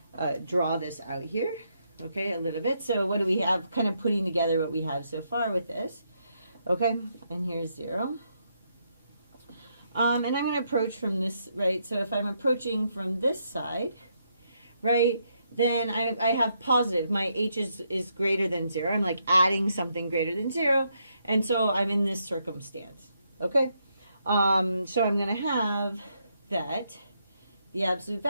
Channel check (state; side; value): inverted; both; correlation -0.77